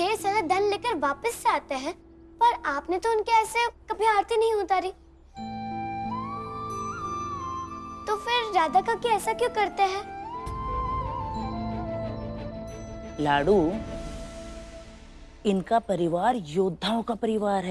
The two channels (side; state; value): both; identical; correlation 1.00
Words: सारा धन लेकर वापस से आते हैं, पर आपने तो उनके ऐसे कभी आरती नहीं उतारी। तो फिर राधा काकी ऐसा क्यों करते हैं? लाडू, इनका परिवार योद्धाओं का परिवार